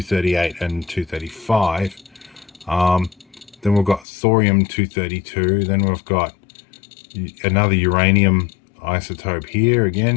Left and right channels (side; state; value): right; drops out; at 4.0 s